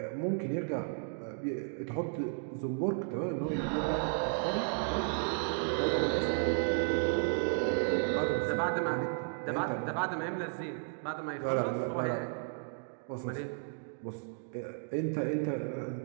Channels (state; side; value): silent; left; digital silence